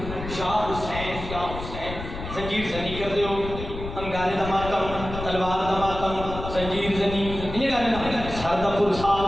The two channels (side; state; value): left; noise; rumble, 9 dB below the sound